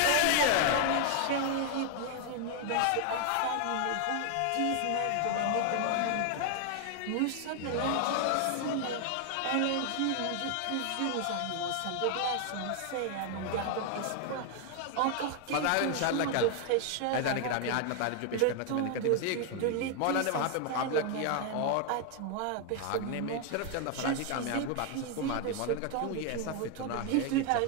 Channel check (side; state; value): both; different; correlation 0.00